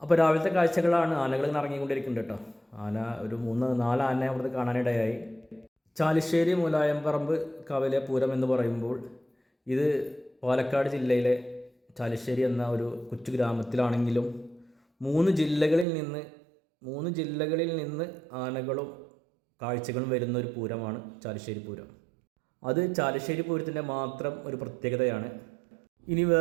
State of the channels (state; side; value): drops out; left; at 15.9 s